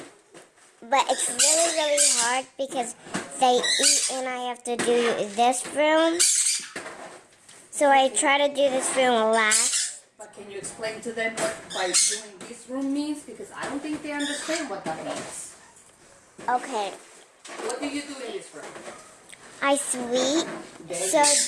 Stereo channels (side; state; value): both; identical; correlation 1.00